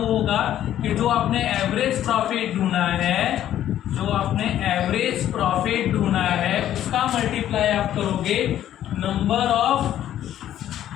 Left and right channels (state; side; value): quieter; right; 11.7 dB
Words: होगा कि जो आपने एवरेज प्रॉफिट ढूंढा है, उसका मल्टीप्लाई आप करोगे number of